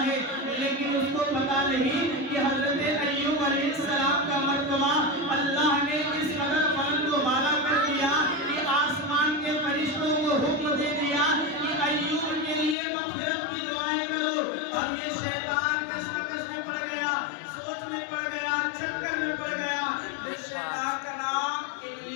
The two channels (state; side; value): drops out; right; at 12.8 s